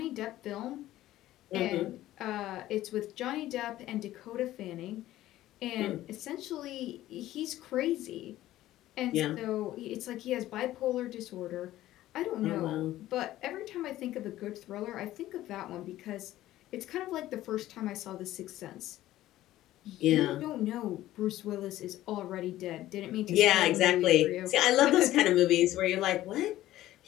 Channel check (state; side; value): quieter; right; 14.7 dB